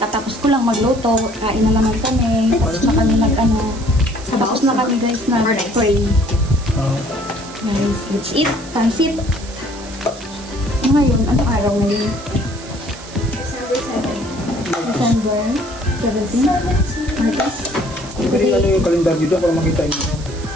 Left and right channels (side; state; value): right; noise; hiss, 17 dB below the sound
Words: ko lang magluto. Kain na naman kami. Tapos na kami tapos na kami guys na pray. Guys, let's eat. Pansit. Ngayon, anong araw ngayon? December 17. Martes. Pwede ano yung kalendar dito para makita nyo.